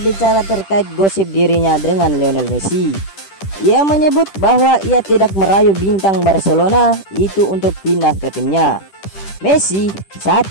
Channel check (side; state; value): right; late; 10 ms